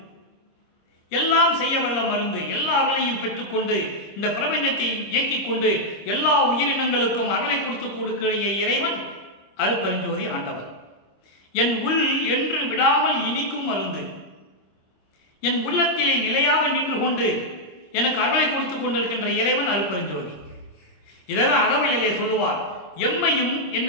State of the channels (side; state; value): right; late; 26 ms